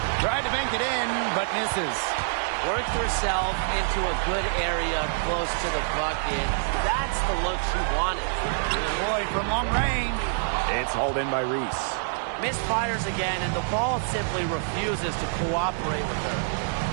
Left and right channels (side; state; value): left; silent; 61 dB below the other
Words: Tried to bank it in, but misses. Worked herself into a good area close to the bucket. That's the look she wanted. Lloyd from long range. It's hauled in by Reese. Misfires again, and the ball simply refuses to cooperate with her.